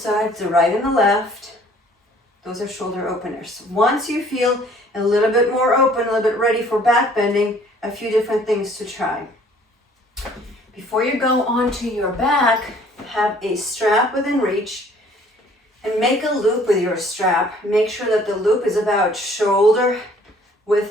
the right and the left. Those are shoulder openers. Once you feel a little bit more open, a little bit ready for back bending, a few different things to try. Before you go onto your back, have a strap within reach and make a loop with your strap. Make sure that the loop is about shoulder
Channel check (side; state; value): both; normal; correlation 0.57